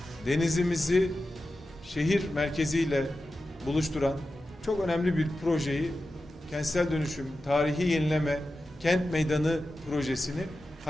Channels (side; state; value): both; normal; correlation 0.92